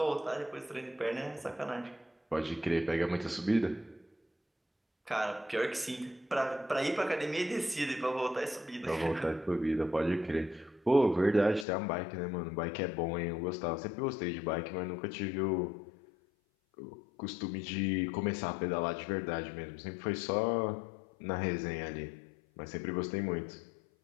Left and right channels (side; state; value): right; drops out; at 11.7 s